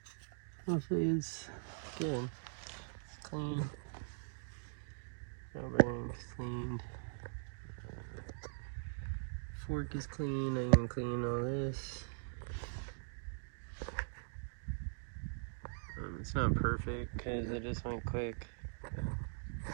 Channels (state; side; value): silent; left; digital silence